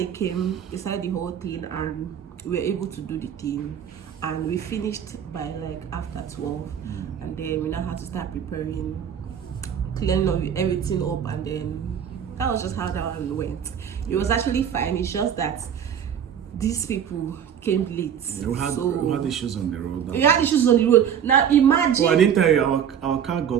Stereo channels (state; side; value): quieter; left; 8.6 dB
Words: came, they started the whole thing, and we were able to do the thing, and we finished by like after 12, and then we now had to start preparing, cleaning everything up, and then that was just how that one went. It was actually fine. It's just that these people came late. We had issues on the road. We had issues on the road. Now imagine. Oh, I didn't tell you, our car